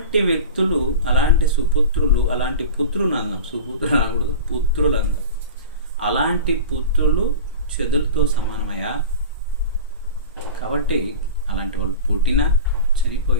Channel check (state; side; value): inverted; both; correlation -0.32